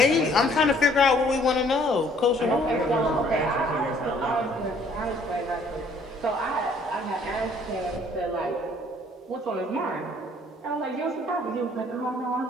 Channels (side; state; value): both; normal; correlation 0.60